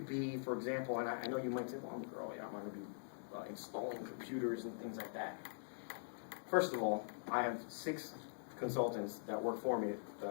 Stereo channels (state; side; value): silent; right; digital silence